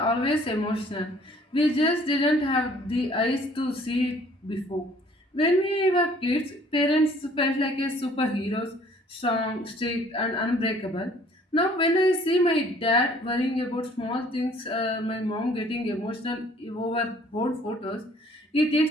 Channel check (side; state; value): both; normal; correlation 0.57